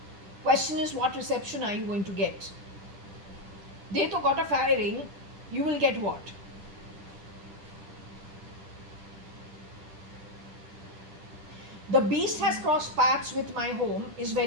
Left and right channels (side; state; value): left; late; 10 ms